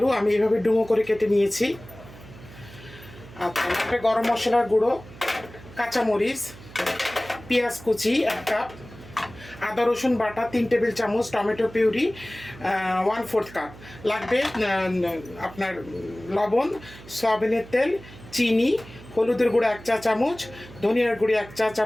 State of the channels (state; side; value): noise; right; hum, 18 dB below the sound